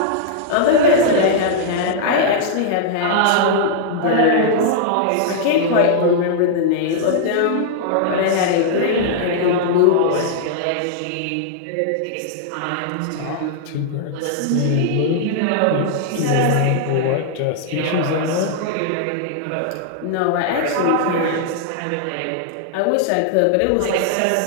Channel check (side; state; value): both; different; correlation -0.01